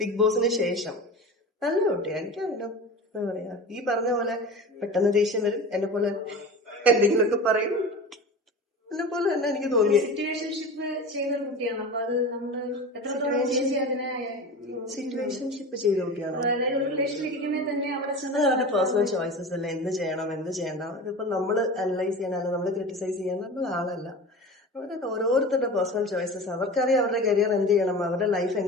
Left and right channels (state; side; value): normal; both; correlation 0.32